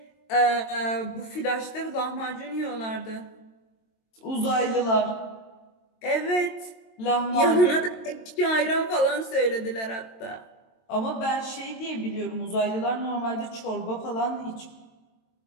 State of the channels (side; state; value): right; late; 22 ms